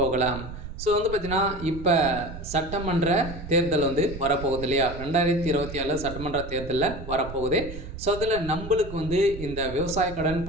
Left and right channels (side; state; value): right; noise; rumble, 11 dB below the sound